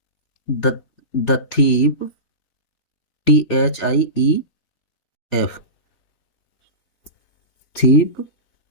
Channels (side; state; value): right; late; 3.4 ms